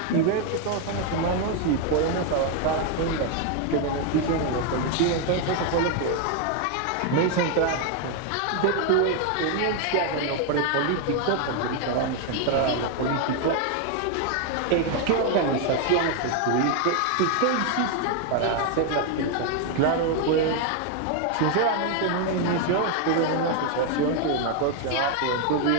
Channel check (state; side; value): different; both; correlation 0.01